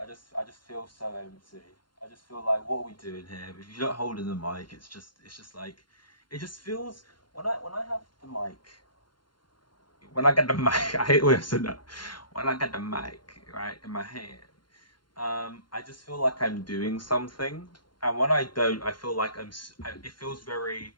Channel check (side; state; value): right; late; 0.71 ms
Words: I just feel so empty. I just feel like, what are we doing here? If you don't hold in the mic, it's just like, it just feels when I have the mic, when I get the mic, I hate the way I said that. When I get the mic right in my hand, I just feel like I'm doing something, and when I don't, I feel like it feels very.